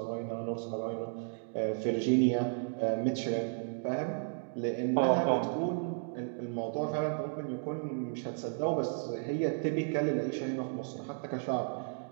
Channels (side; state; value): left; silent; digital silence